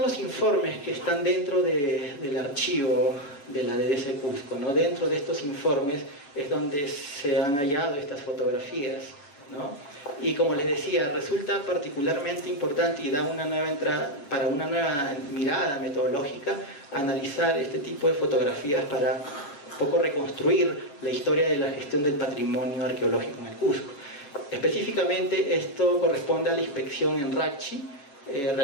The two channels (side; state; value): right; late; 7.1 ms